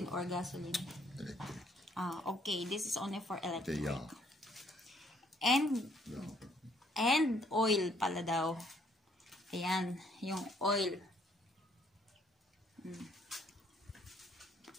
or gasoline? Okay. This is only for electric. And oil pala daw. Ayan, yung oil.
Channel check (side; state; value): both; normal; correlation 0.66